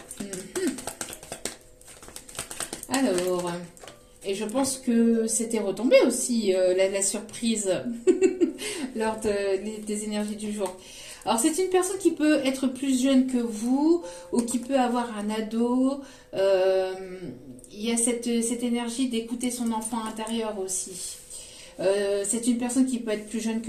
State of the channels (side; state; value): both; identical; correlation 1.00